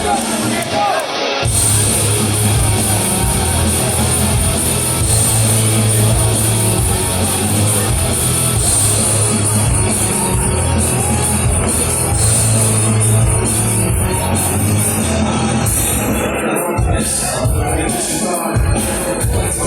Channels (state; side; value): identical; both; correlation 1.00